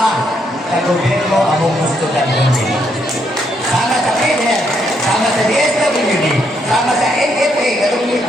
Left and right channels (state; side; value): normal; both; correlation 0.75